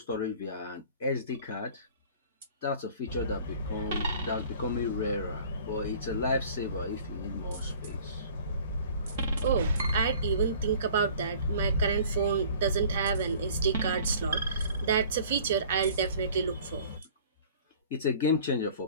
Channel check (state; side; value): inverted; both; correlation -0.49